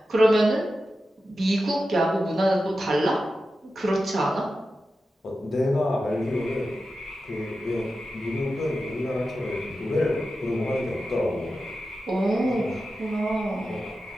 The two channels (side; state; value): both; normal; correlation 0.92